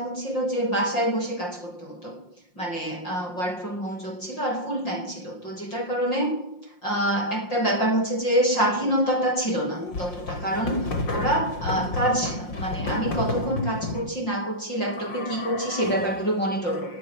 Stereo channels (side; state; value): right; late; 5.6 ms